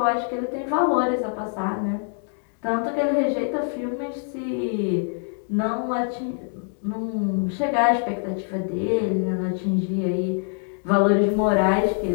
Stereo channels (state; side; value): silent; right; 56 dB below the other